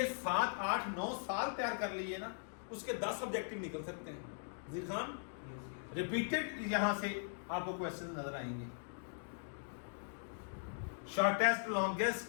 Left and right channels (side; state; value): right; silent; digital silence